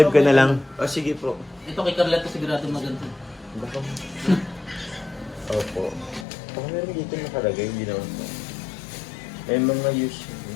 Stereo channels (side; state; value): right; drops out; at 6.2 s